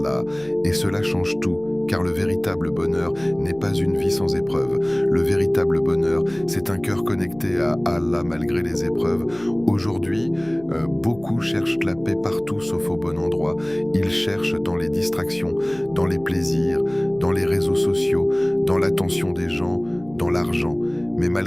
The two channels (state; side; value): noise; left; hum, 24 dB below the sound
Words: et cela change tout, car le véritable bonheur n'est pas une vie sans épreuves. Le véritable bonheur, c'est un cœur connecté à Allah malgré les épreuves. Aujourd'hui, beaucoup cherchent la paix partout sauf au bon endroit. Ils cherchent dans les distractions, dans les plaisirs, dans les réseaux sociaux, dans l'attention des gens, dans l'argent. Mais